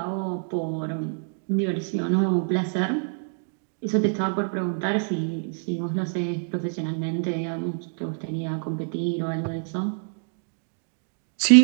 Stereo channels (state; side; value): silent; left; 61 dB below the other